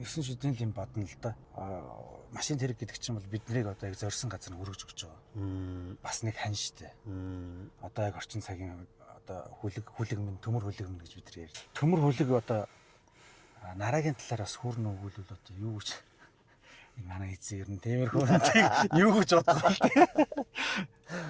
9 шидийн юм бодно л да. Машин тэрэг гэдэг чинь бол биднийг одоо яг зорьсон газар нь хүргэж өгч байгаа. Бас нэг хань штэ. Одоо яг орчин цагийн одоо хүлэг минь төмөр хүлэг минь гэж бид нар ярьж. Төмөр хүлэг одоо нарагийн талаар бас хүрнэ өгүүлвэл одоо юу гэж энэ манай эзэн ер нь тиймэрхүү юу гэж боддог вэ?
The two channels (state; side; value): identical; both; correlation 1.00